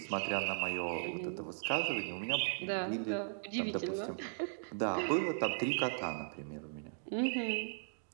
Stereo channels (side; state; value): left; silent; digital silence